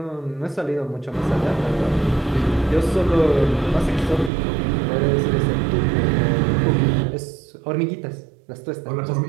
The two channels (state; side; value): drops out; left; at 4.3 s